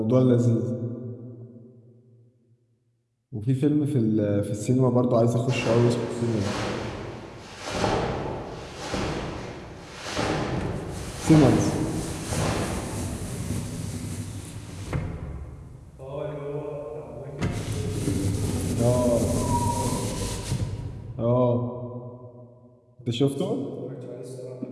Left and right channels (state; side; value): identical; both; correlation 1.00